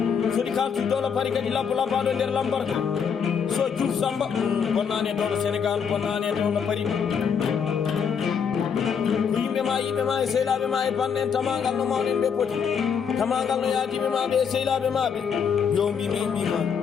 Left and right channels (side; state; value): right; quieter; 6.9 dB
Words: soɗi kaltuy dowlo pari kadi labbo labbaɗo nder lambarka so Diouf Samba bonnani e dowlo Sénégal bonnani e dowlo pari ko yimɓe ma e sehlaɓe ma e bande en tamagal no mawnen ɓe poti tamagal no yaadiɓe maɓe e sehlaɓe maɓe yo mbimi mbima